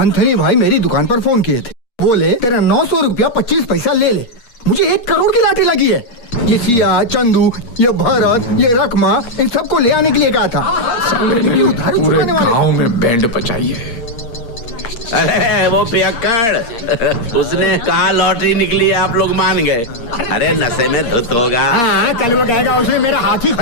भाई मेरी दुकान पर फोन किए थे, बोले तेरा 900 रुपया 25 पैसा ले ले। मुझे 1 करोड़ की लाठी लगी है। ये सिया, चंदू, ये भरत, ये रकमा, इन सबको ले आने के लिए कहा था। पूरे गांव में बैंड बजाई है। अरे वो पियक्कड़, उसने कहा लॉटरी निकली है, आप लोग मान गए। अरे नशे में धुत होगा। हाँ, कल वो कहेगा उसने मेरा हाथी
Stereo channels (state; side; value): late; right; 8.4 ms